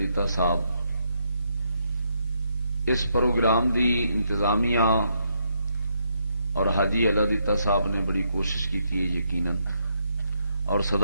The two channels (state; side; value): inverted; both; correlation -0.77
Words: صاحب اس پروگرام دی انتظامیہ اور حاجی اللہ دیتا صاحب نے بڑی کوشش کی ہے یقیناً، اور